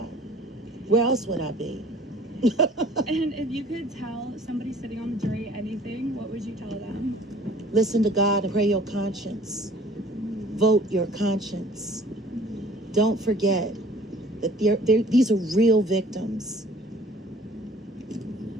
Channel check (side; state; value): both; normal; correlation 0.52